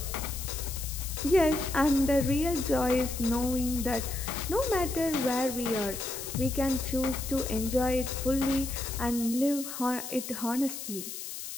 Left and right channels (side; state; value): left; noise; hiss, 8 dB below the sound